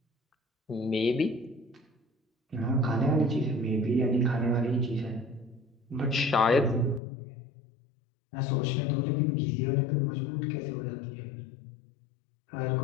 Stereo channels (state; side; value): drops out; right; at 7.0 s